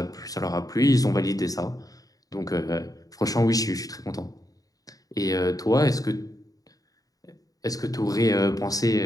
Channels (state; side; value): late; right; 0.17 ms